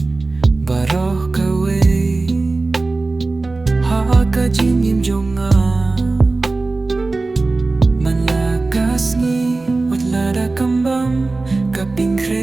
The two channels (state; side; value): quieter; left; 3.4 dB